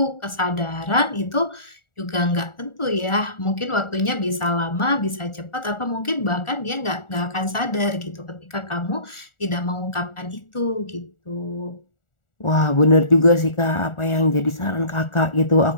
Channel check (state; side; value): late; right; 1.4 ms